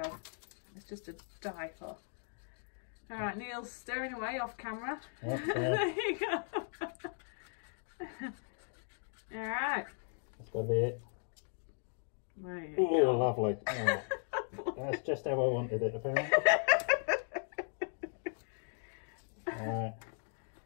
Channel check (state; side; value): silent; right; 53 dB below the other